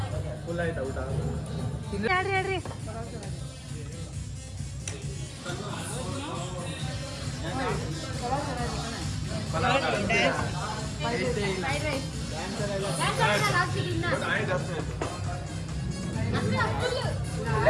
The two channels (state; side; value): identical; both; correlation 1.00